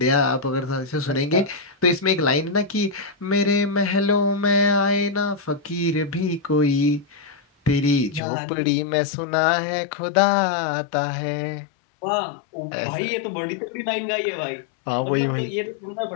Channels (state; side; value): drops out; right; at 8.2 s